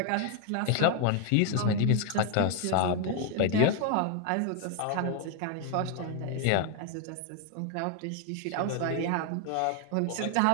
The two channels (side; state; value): both; different; correlation 0.00